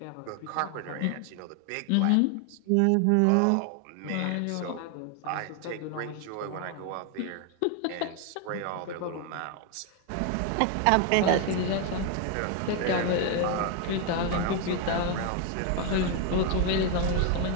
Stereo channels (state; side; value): different; both; correlation 0.01